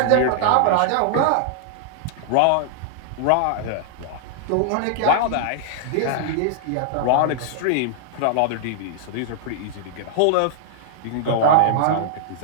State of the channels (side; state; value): both; different; correlation -0.01